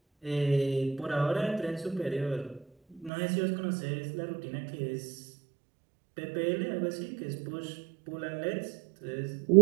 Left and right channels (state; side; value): drops out; left; at 3.1 s